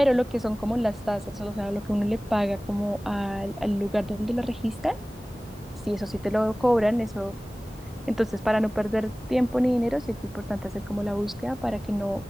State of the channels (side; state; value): both; normal; correlation 0.98